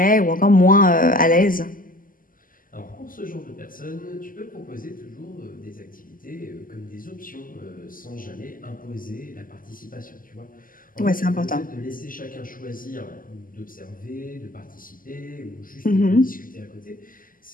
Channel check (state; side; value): late; right; 0.41 ms